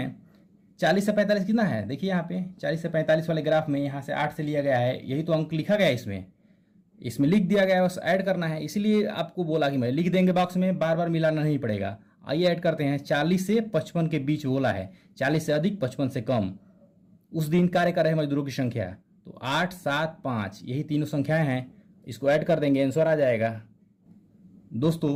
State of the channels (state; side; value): identical; both; correlation 1.00